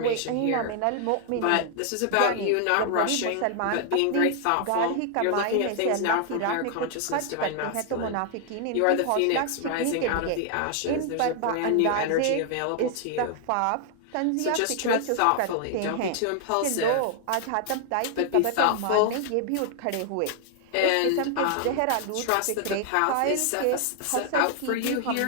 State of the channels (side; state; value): both; different; correlation 0.00